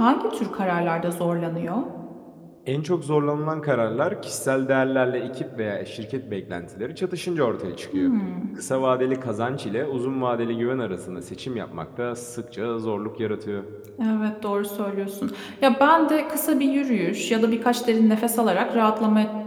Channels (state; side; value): identical; both; correlation 1.00